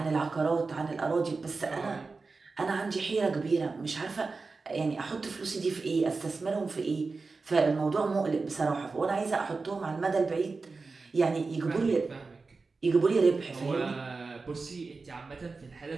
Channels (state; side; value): quieter; left; 4.1 dB